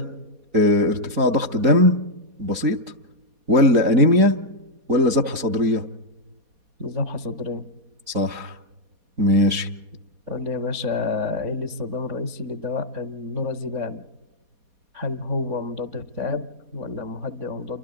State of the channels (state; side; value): late; left; 4.2 ms